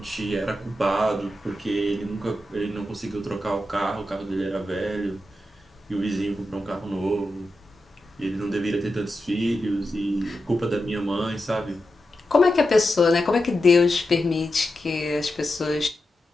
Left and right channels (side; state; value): both; normal; correlation 0.89